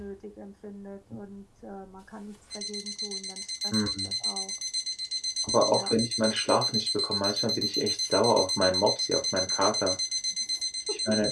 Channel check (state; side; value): identical; both; correlation 1.00